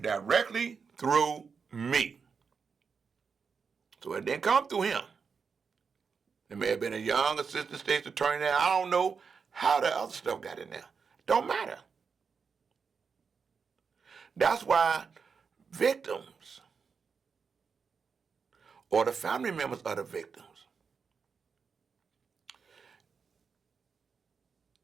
directly through me. So it didn't come through him. There may have been a young assistant state's attorney there. I don't know how the other stuff got in there. Don't matter. That's why victims or the family members of the victims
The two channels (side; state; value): left; quieter; 5.7 dB